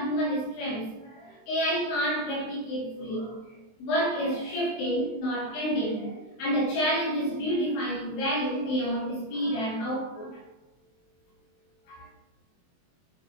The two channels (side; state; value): right; late; 23 ms